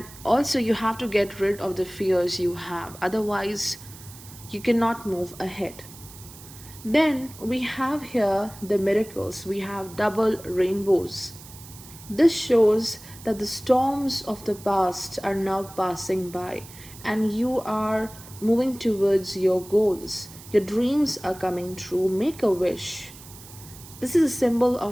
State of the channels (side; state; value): right; noise; hiss, 18 dB below the sound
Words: also, you have to get rid of the fears you have, otherwise, you cannot move ahead. Then we have here the miracles. We have double rainbows. This shows that the storms of the past are now passing by and you are moving towards your goals. Your dreams are coming true. Make a wish. This is a symbol